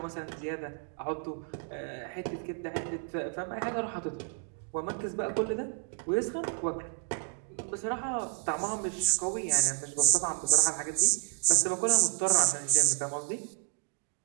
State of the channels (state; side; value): silent; left; 57 dB below the other